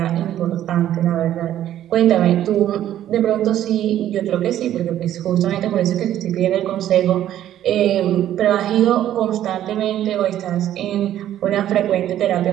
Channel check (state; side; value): quieter; left; 11.9 dB